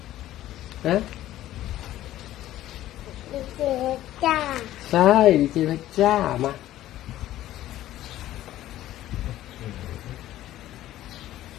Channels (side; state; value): right; quieter; 13.9 dB